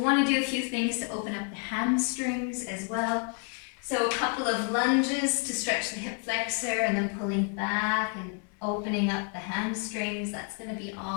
want to do a few things to open up the hamstrings as well. So a couple of lunges to stretch the hip flexor and then pulling back and opening up the hamstrings. That's going to be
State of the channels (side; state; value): right; quieter; 38.5 dB